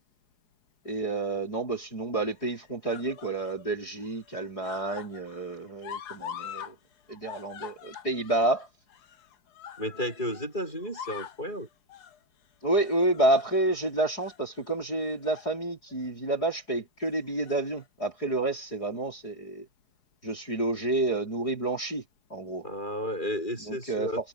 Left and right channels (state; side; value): late; right; 4.8 ms